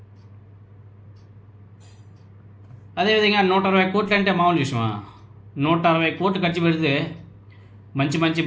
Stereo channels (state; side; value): identical; both; correlation 1.00